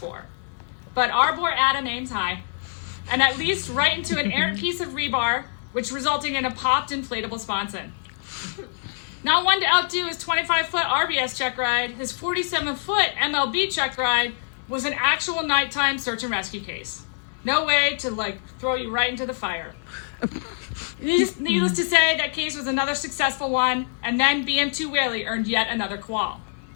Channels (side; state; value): right; silent; 55 dB below the other